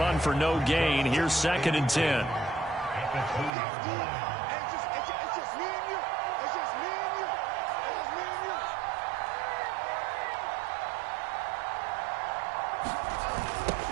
for no gain, here's 2nd and 10.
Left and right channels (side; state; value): left; drops out; at 3.6 s